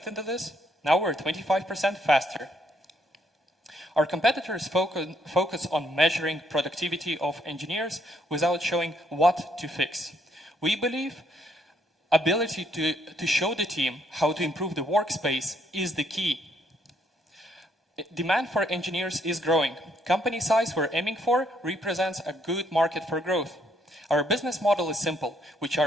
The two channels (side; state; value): both; normal; correlation 0.71